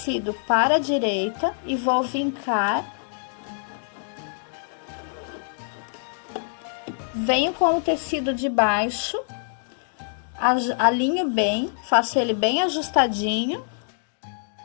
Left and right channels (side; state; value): right; silent; digital silence